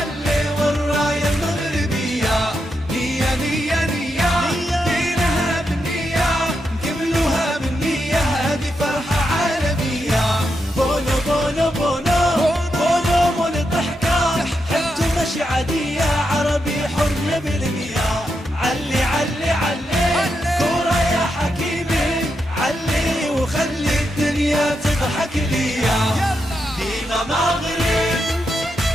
والراية المغربية. نية نية نية دينها بالنية نكملوها بالنية هذه فرحة عالمية. بونو بونو بونو بونو مول الضحكة حبته ماشي عادية عربي حر بالمياه. علي علي علي كورة يا حكيمي علي وخلي الدنيا تضحك ليا. ديما مغرب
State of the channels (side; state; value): both; normal; correlation 0.84